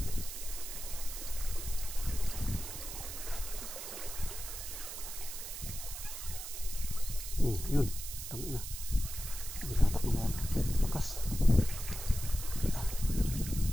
Yun, tangin na. Binatak mo yan. Lakas.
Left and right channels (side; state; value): right; noise; hiss, 8 dB below the sound